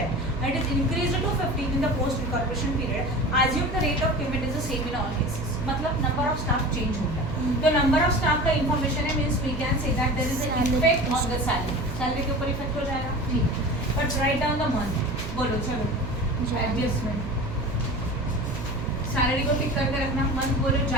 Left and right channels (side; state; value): right; noise; hum, 8 dB below the sound